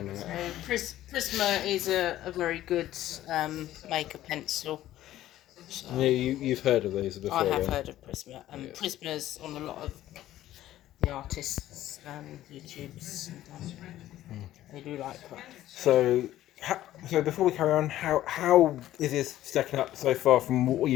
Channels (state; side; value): quieter; right; 13.8 dB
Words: Prisma is a very good maker pencil. So Yeah, you've heard of these before. I have then. heard of Prisma. Yes. Prisma's on a lot of the artists' YouTubes. They do like that. So before we carry on, how is this stacking up so far from what